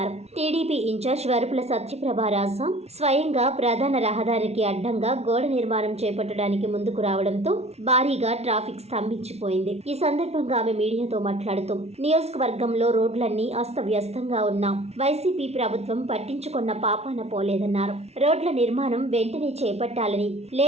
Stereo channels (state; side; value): late; left; 0.31 ms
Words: టీడీపీ ఇన్ఛార్జ్ వరపుల సత్యప్రభరాజ స్వయంగా ప్రధాన రహదారికి అడ్డంగా గోడ నిర్మాణం చేపట్టడానికి ముందుకు రావడంతో భారీగా ట్రాఫిక్ స్తంభించిపోయింది. ఈ సందర్భంగా ఆమె మీడియాతో మాట్లాడుతూ నియోజకవర్గంలో రోడ్లన్నీ అస్తవ్యస్తంగా ఉన్న వైసీపీ ప్రభుత్వం పట్టించుకున్న పాపాన పోలేదన్నారు. రోడ్ల నిర్మాణం వెంటనే చేపట్టాలని,